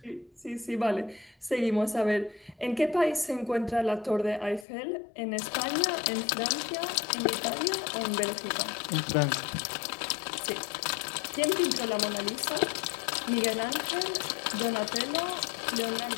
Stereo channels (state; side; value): drops out; right; at 4.7 s